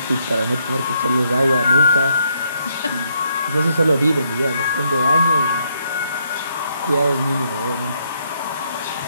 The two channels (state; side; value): inverted; both; correlation -0.73